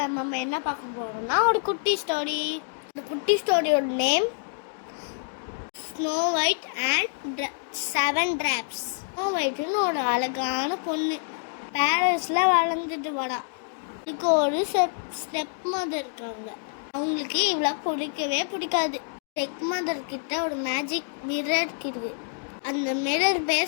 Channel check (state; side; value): silent; right; digital silence